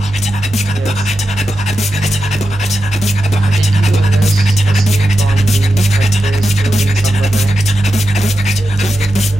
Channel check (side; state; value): both; normal; correlation 0.89